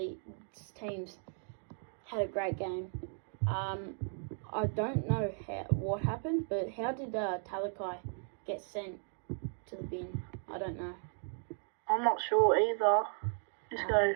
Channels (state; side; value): silent; left; 54 dB below the other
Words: teams had a great game. I don't know what happened, but how did Talakai get sent to the bin? I don't know. I'm not sure either. Just go